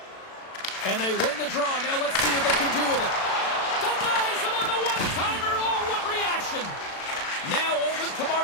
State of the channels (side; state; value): right; late; 36 ms